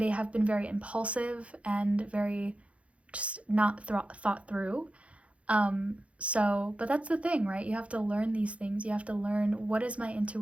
impulsive and very just not thought through. But that's the thing, right? You have to learn these things. You have to learn, what is my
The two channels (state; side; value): late; left; 0.063 ms